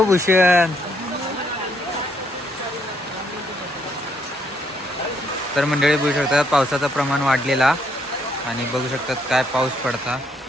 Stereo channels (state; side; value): normal; both; correlation 0.72